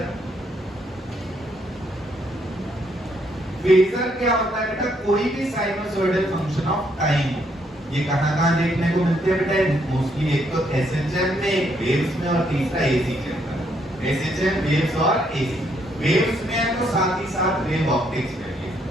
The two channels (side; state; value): both; normal; correlation 0.72